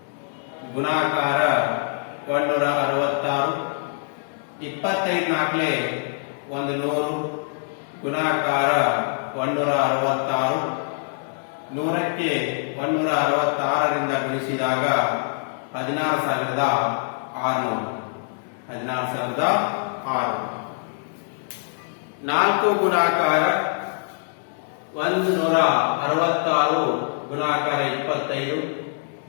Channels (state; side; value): silent; right; digital silence